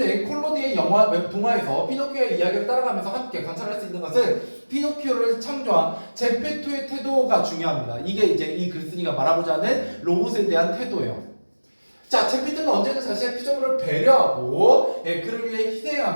콜로디의 동화에서 피노키오의 이야기를 따라가면서 함께 관찰할 수 있는 것은 피노키오를 창조한 제페토의 태도가 중요합니다. 이게 이제 이 글쓴이가 말하고자 하는 로봇에 대한 태도예요. 자, 제페토는 언제든 자신의 피조물을 배려하고 그를 위해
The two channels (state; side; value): inverted; both; correlation -1.00